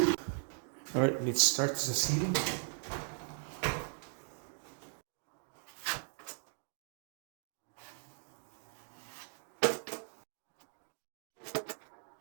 All right, let's start the sealing.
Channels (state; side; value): silent; left; 52 dB below the other